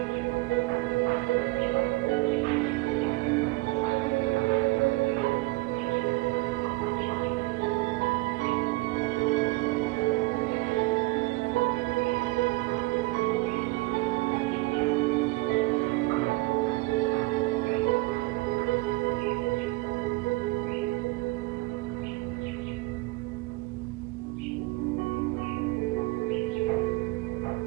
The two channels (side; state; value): left; quieter; 22.1 dB